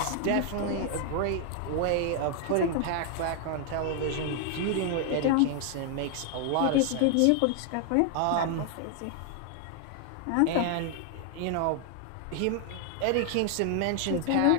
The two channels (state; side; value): different; both; correlation 0.00